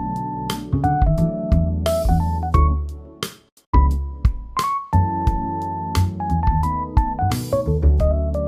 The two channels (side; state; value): both; identical; correlation 1.00